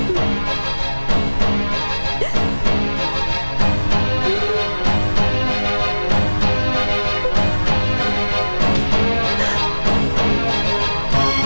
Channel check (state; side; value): inverted; both; correlation -1.00